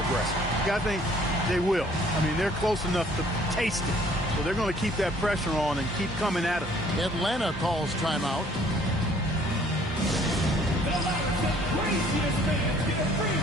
I think they will. I mean, they're close enough to taste it. So they're going to keep that pressure on and keep coming at it. Atlanta calls timeout. The loudest and craziest fans get a free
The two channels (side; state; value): both; normal; correlation 0.58